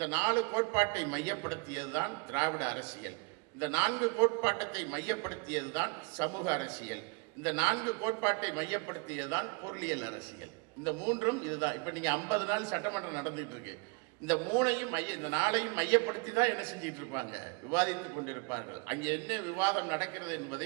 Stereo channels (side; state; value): left; quieter; 31.4 dB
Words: 4 கோட்பாட்டை மையப்படுத்தியது தான் திராவிட அரசியல். இந்த 4 கோட்பாட்டத்தை மையப்படுத்தியது தான் சமூக அரசியல். இந்த 4 கோட்பாட்டை மையப்படுத்தியதுதான் பொருளியல் அரசியல். இந்த 3ம் இதுதான். இப்ப நீங்க 50 நாள் சட்டமன்றம் நடந்துட்டு இருக்கு. இந்த 3ஐயும் இந்த 4ஐயும் மையப்படுத்தி தான் என்ன செஞ்சிட்டு இருப்பாங்க, விவாதித்துக் கொண்டிருப்பார்கள். அங்கே என்ன விவாதம் நடக்கிறது